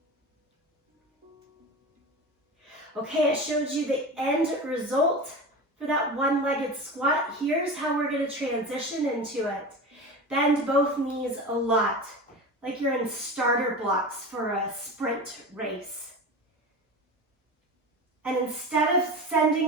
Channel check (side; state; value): both; normal; correlation 0.29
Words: Okay, I showed you the end result for that one-legged squat. Here's how we're going to transition into it. Bend both knees a lot, like you're in starter blocks for a sprint race. And instead of